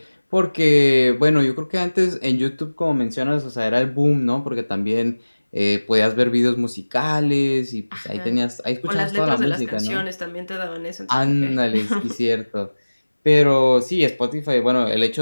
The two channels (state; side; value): inverted; both; correlation -1.00